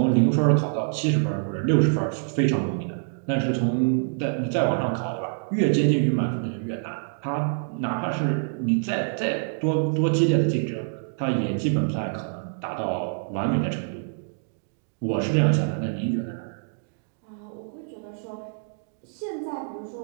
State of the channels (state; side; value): silent; left; digital silence